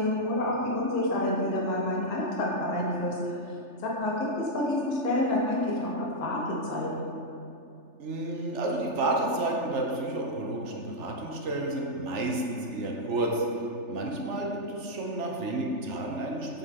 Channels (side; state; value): left; late; 3.4 ms